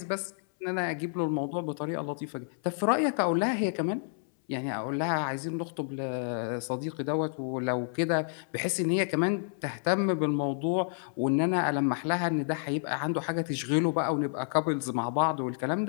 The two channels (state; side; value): silent; right; 58 dB below the other